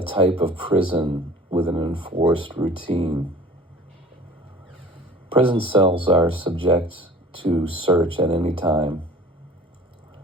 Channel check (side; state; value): both; normal; correlation 0.46